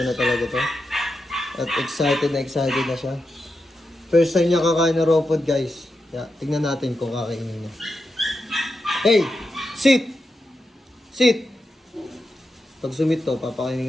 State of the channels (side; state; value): both; normal; correlation 0.88